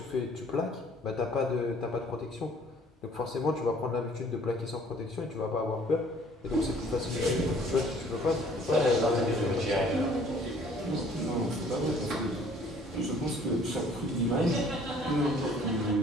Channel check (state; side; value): normal; both; correlation 0.56